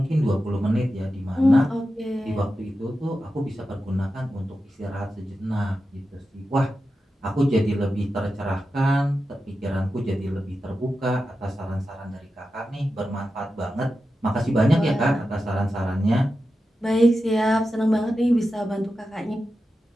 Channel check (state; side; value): normal; both; correlation 0.91